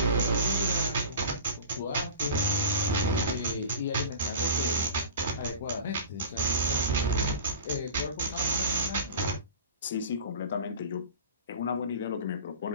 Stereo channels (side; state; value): both; inverted; correlation -0.34